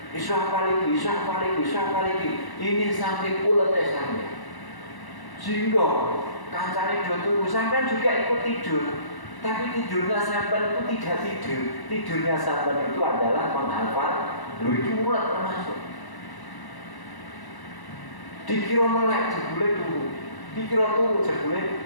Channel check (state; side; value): late; right; 1.0 ms